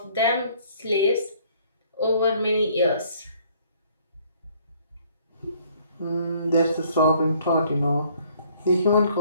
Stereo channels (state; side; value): inverted; both; correlation -0.61